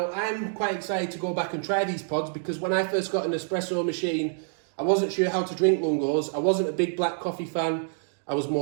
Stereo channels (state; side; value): silent; left; digital silence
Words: I'm quite excited to go back and try these pods, because when I first got an espresso machine, I wasn't sure how to drink Lungos. I wasn't a big black coffee fan. I was